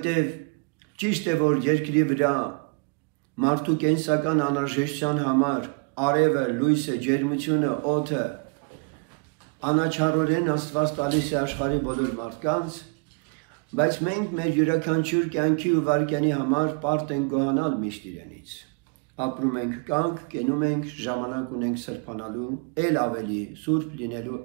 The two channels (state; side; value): quieter; left; 32.8 dB